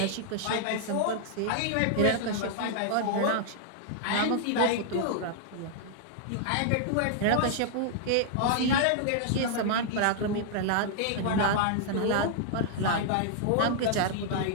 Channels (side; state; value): both; different; correlation -0.01